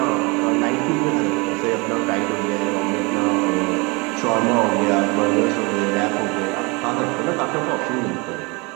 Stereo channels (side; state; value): left; quieter; 27.7 dB